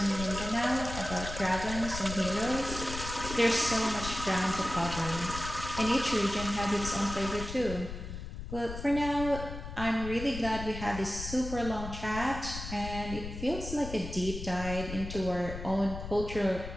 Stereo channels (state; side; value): noise; left; rumble, 8 dB below the sound